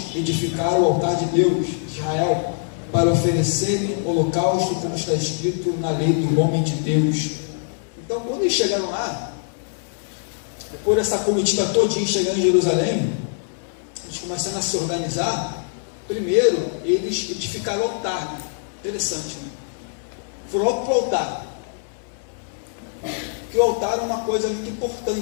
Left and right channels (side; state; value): right; silent; 63 dB below the other